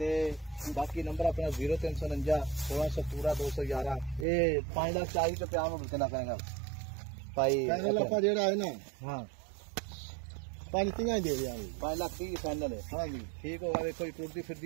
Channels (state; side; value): drops out; left; at 4.2 s